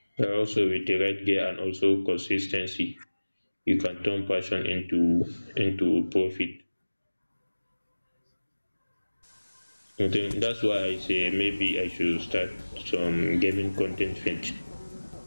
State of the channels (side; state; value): both; inverted; correlation -1.00